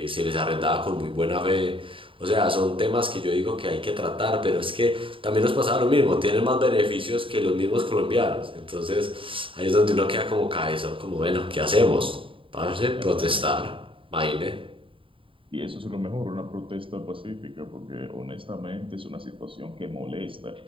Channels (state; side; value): late; left; 0.25 ms